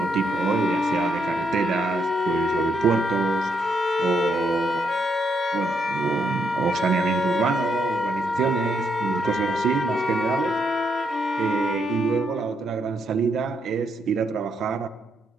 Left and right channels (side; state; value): both; normal; correlation 0.77